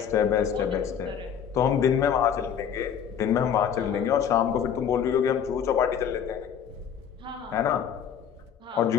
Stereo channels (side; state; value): right; quieter; 8.3 dB